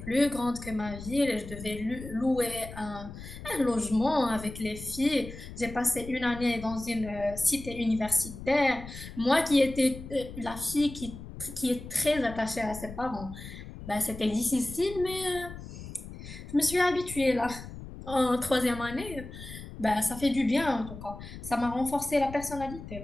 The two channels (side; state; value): left; noise; rumble, 12 dB below the sound